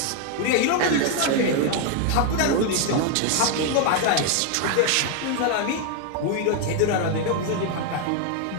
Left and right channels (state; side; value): different; both; correlation 0.01